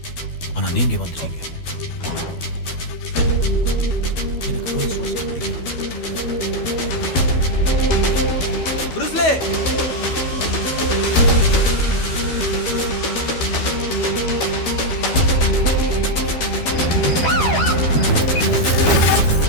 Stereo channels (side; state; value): right; late; 12 ms